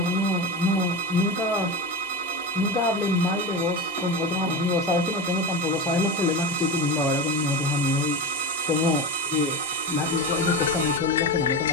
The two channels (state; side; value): normal; both; correlation 0.23